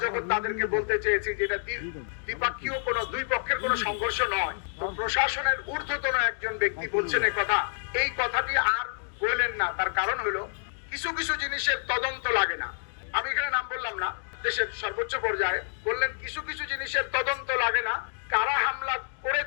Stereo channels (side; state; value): right; silent; digital silence